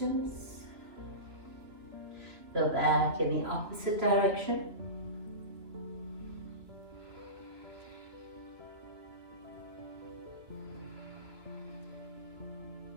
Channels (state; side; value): late; left; 2.9 ms